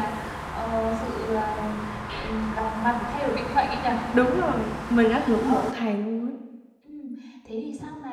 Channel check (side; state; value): both; identical; correlation 1.00